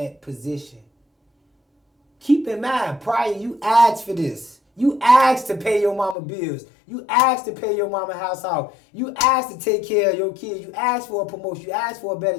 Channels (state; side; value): drops out; right; at 6.2 s